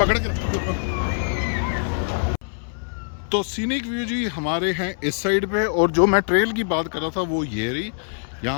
के रखो। तो सीनिक व्यू जी हमारे हैं इस साइड पे, और जो मैं ट्रेल की बात कर रहा था वो ये रही।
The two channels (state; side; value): silent; right; 61 dB below the other